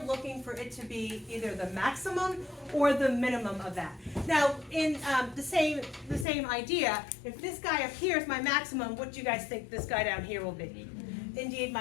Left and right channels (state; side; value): drops out; right; at 6.2 s